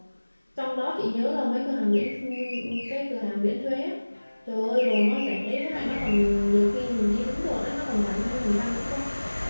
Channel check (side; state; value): both; inverted; correlation -1.00